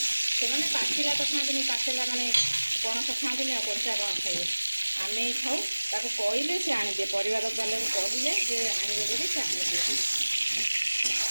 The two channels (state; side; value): inverted; both; correlation -1.00